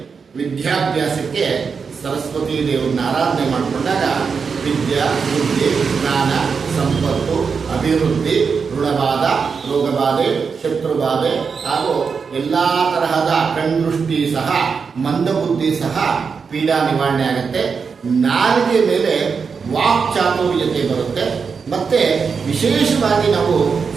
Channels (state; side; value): quieter; left; 5.6 dB